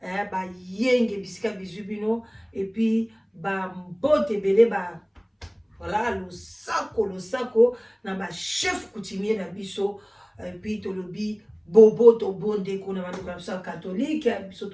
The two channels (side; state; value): both; identical; correlation 1.00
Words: ba yenge bisika bizui bino et puis bambo tebele ba voilà le sako na ba chef coutumier na biso et puis tolobi bobo to bonde kuna bantu kabisa catholique biso